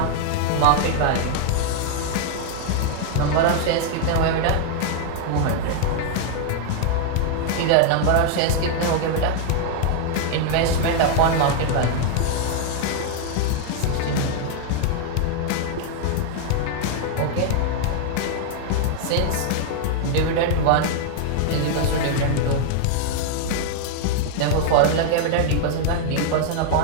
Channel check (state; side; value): different; both; correlation 0.00